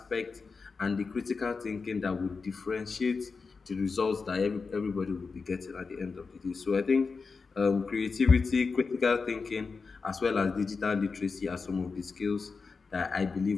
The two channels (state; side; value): quieter; right; 4.7 dB